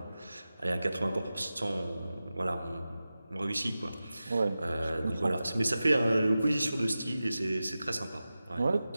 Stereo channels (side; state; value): both; inverted; correlation -0.94